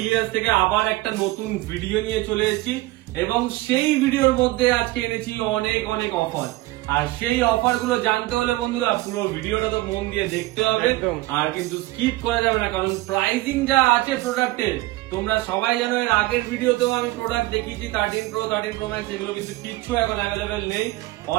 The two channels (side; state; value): left; quieter; 19.1 dB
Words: থেকে আবার একটা নতুন ভিডিও নিয়ে চলে এসেছি, এবং সেই ভিডিওর মধ্যে আজকে এনেছি অনেক অনেক অফার। আর সেই অফার গুলো জানতে হলে বন্ধুরা পুরো ভিডিওটা তো মন দিয়ে দেখতে হবে, আর কিন্তু স্কিপ করা যাবে না, কারণ প্রাইসিং যা আছে প্রোডাক্টের তোমরা সবাই জানো। এর আগের ভিডিওতেও আমি প্রোডাক্ট দেখিয়েছি 13 প্রো 13 প্রো ম্যাক্স, এগুলো কিন্তু কিচ্ছু এখন অ্যাভেলেবেল নেই।